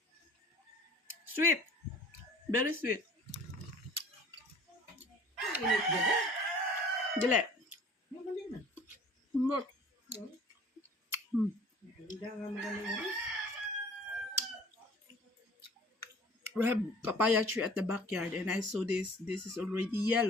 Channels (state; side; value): normal; both; correlation 0.48